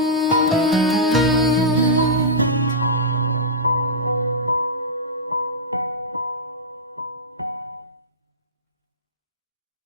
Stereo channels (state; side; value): normal; both; correlation -0.14